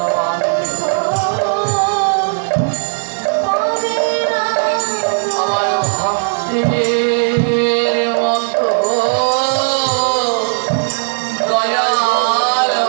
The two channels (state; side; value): silent; left; digital silence